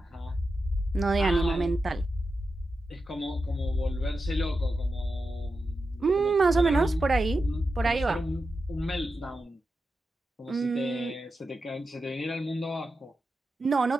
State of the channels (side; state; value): both; normal; correlation 0.90